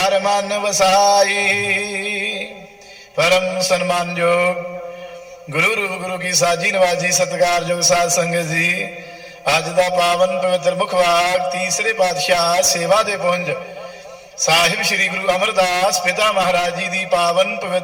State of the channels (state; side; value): identical; both; correlation 1.00